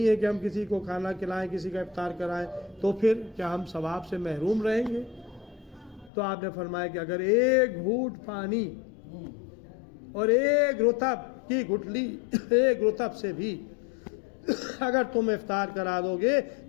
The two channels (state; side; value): drops out; right; at 6.1 s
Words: ہے کہ ہم کسی کو کھانا کھلائیں، کسی کا افطار کرائیں، تو پھر کیا ہم ثواب سے محروم رہیں گے؟ تو آپ نے فرمایا کہ اگر ایک گھونٹ پانی اور ایک رطب کی گٹلی ایک رطب سے بھی اگر تم افطار کرا دو گے